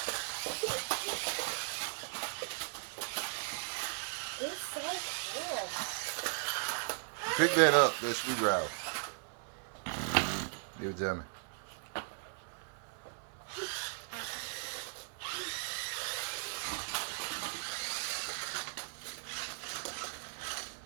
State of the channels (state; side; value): silent; left; 53 dB below the other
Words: It's so cool. Pick that up, that screwdriver. Give it to me.